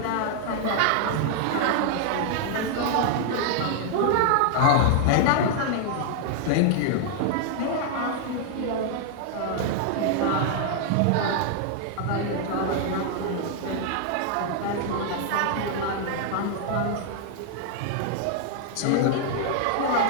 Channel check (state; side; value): different; both; correlation 0.00